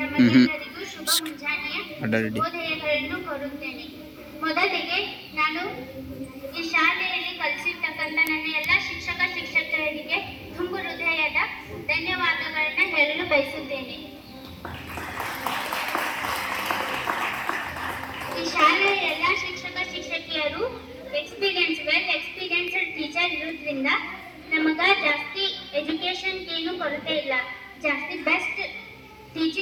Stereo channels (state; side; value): identical; both; correlation 1.00